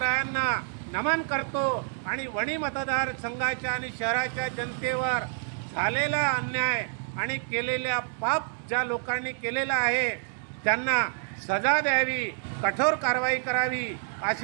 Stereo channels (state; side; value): silent; left; 59 dB below the other